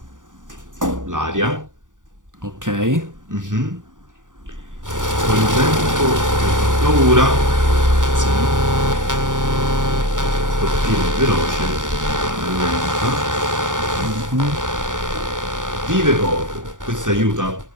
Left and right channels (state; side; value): late; left; 0.88 ms